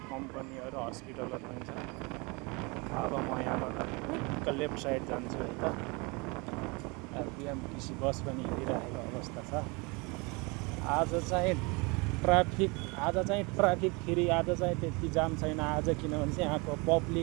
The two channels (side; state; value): left; quieter; 28.4 dB